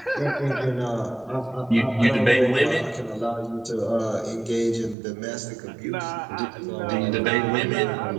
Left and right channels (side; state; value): left; drops out; at 5.0 s